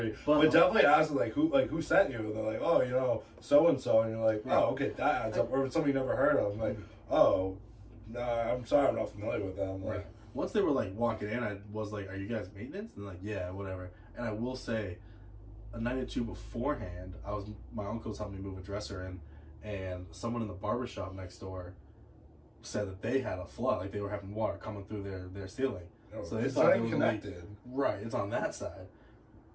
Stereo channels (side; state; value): both; identical; correlation 1.00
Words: But definitely ask them, like, who sent you? And they're like, oh, you know, so-and-so. And you're like, oh, okay, that adds up. Or somebody you never heard of. I'm like, oh, no, I'm sorry, I'm not familiar with them. Like, Right. Once they were like walking in, I was like, "Are you guys maintenance?" And they're like, "Yeah, whatever." And I will say, a night or two beforehand, my uncle was helping me move a dresser in, and someone in the barbershop next door said that they had a flood, like they were having water coming through their ceiling. oh, So they it's thought not it even was a leak. connected. Right, it's on that side.